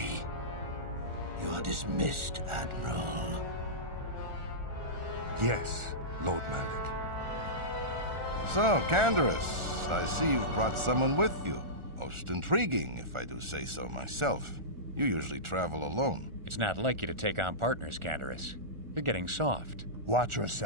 You are dismissed, Admiral. Yes, Lord Malak. So, Canderous, I see you've brought someone with you. Most intriguing, if I do say so myself. You usually travel alone. It's not like you to take on partners, Canderous. You're getting soft. Watch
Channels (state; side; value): late; left; 1.4 ms